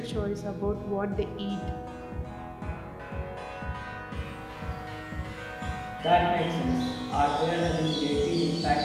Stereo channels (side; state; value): both; identical; correlation 1.00